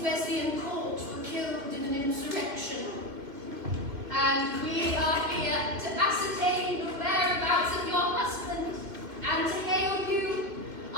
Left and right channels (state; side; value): late; left; 2.6 ms